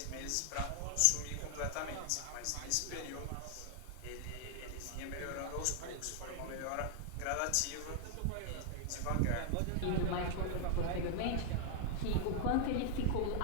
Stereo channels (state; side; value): different; both; correlation 0.00